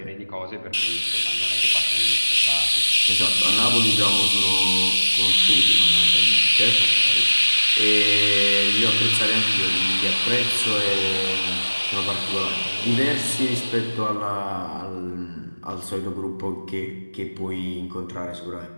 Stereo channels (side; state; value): both; inverted; correlation -1.00